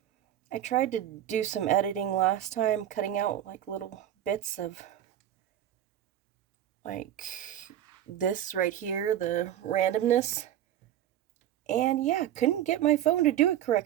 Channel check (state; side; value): quieter; left; 11.4 dB